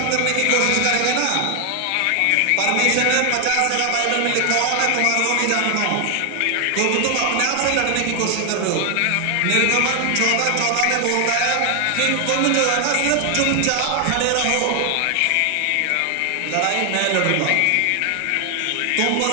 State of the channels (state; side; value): different; both; correlation 0.00